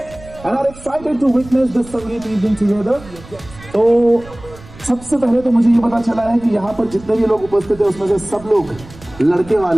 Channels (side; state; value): right; noise; rumble, 19 dB below the sound